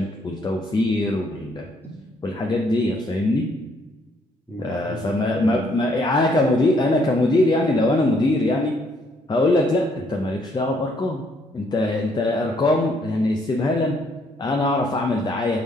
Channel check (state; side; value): normal; both; correlation 0.68